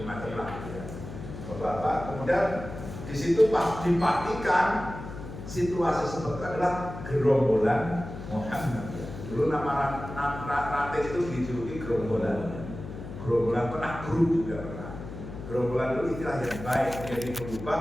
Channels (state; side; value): noise; left; hum, 10 dB below the sound